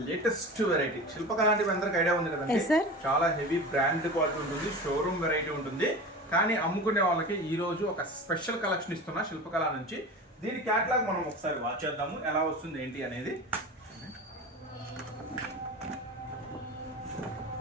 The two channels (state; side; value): normal; both; correlation 0.32